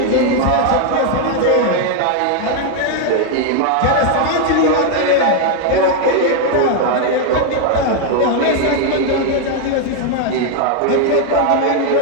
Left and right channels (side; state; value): both; different; correlation 0.01